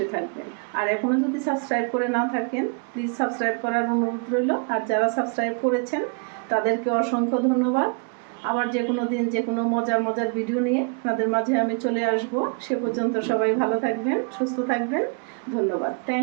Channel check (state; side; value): quieter; left; 37.9 dB